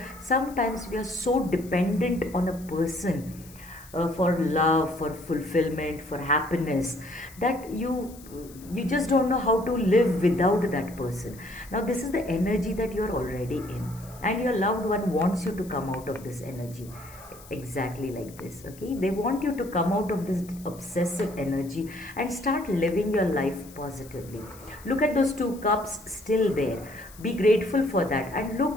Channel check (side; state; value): left; noise; hiss, 21 dB below the sound